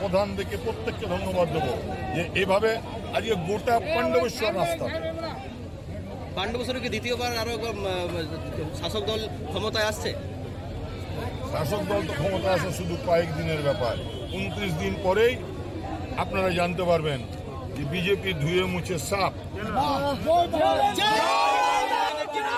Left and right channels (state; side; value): identical; both; correlation 1.00